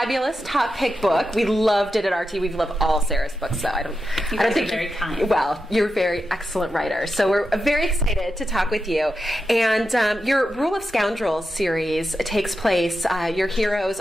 top pick book. We loved it at RT. We've loved all Sarah's books, so I don't think very kind. Well, you're a very excellent writer, so we're very excited to talk with you. And your Rule of Scoundrels series takes place. Your heroes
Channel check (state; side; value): normal; both; correlation 0.89